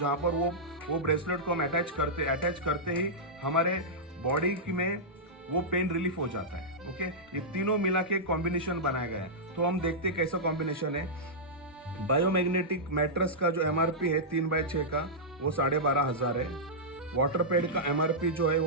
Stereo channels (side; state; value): both; normal; correlation -0.11